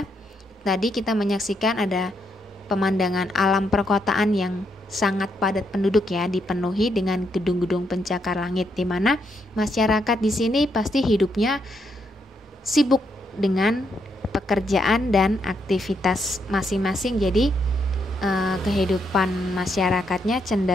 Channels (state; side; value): normal; both; correlation 0.78